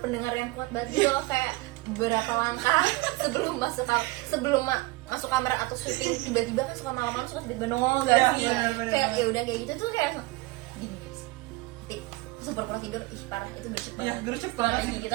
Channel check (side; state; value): left; quieter; 22.2 dB